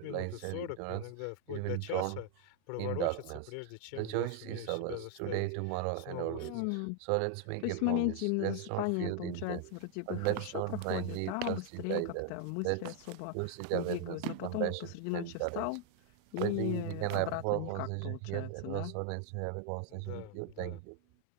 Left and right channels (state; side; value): different; both; correlation 0.00